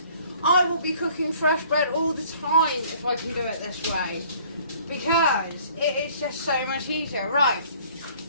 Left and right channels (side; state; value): both; inverted; correlation -0.55